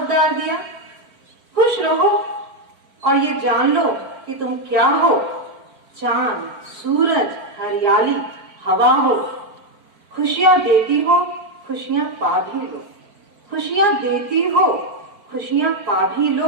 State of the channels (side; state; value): left; late; 4.5 ms